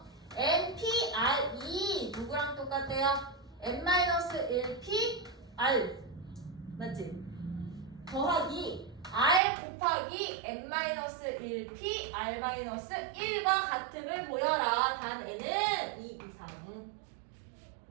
NPR이 누구랑 똑같대요? N-1P R 맞지? 더하기 R 곱하기 N-1P R-1과 같음을 보여라. 단 N은 2 이상.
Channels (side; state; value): left; drops out; at 9.4 s